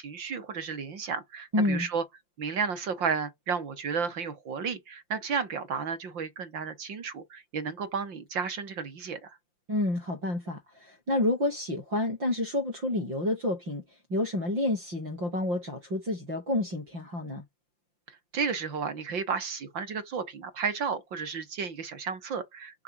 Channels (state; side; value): late; left; 5.7 ms